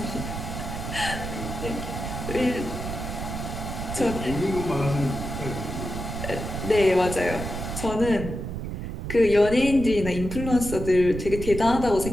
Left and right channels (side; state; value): right; noise; rumble, 6 dB below the sound